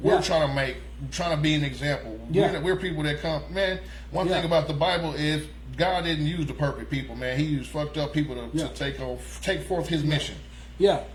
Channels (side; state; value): both; identical; correlation 1.00